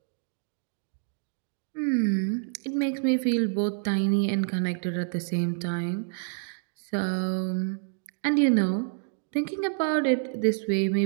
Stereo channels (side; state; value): left; silent; digital silence